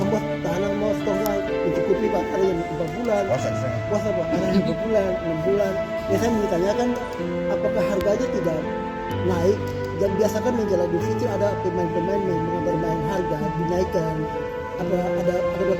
tahanan mau stoknya mencukupi Pak. Ada yang 4 bulan. Puasa Pak. Ada yang 2 bulan, 6 bulan. Ya saya menanyakan apakah harganya tidak naik? Dan biasakan menjelang Idul Fitri ada pemain-pemain yang bermain harga dinaikkan. Ada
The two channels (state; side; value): identical; both; correlation 1.00